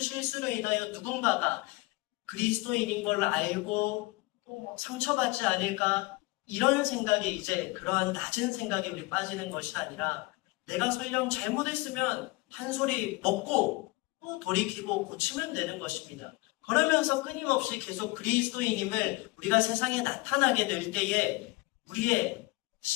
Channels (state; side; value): quieter; right; 22.6 dB